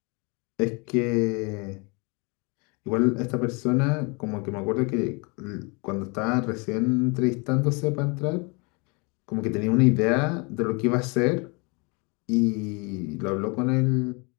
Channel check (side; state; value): right; quieter; 30.8 dB